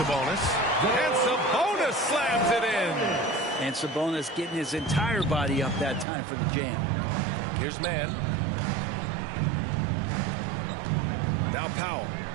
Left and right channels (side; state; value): left; drops out; at 6.1 s